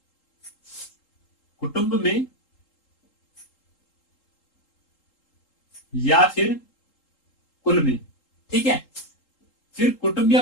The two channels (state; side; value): late; right; 3.8 ms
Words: कुटुंब में या फिर कुल में। ठीक है, फिर कुटुंब